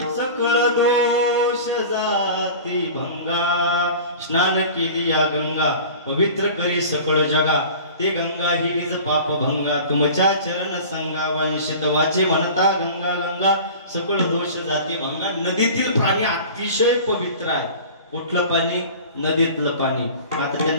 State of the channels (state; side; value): inverted; both; correlation -0.39